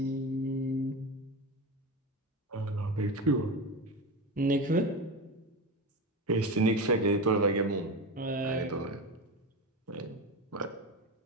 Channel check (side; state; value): both; normal; correlation 0.22